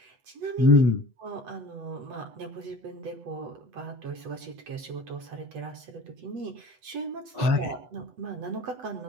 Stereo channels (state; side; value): late; left; 8.1 ms